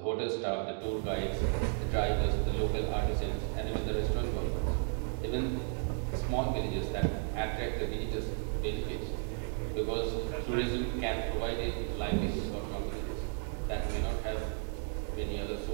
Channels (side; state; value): left; silent; 55 dB below the other